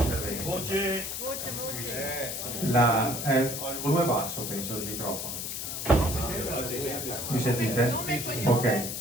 Voce. Ho il volume basso, penso, del microfono. Mi sentite? Ok.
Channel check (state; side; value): noise; left; hiss, 5 dB below the sound